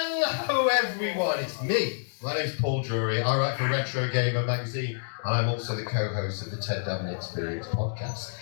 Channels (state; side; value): silent; right; digital silence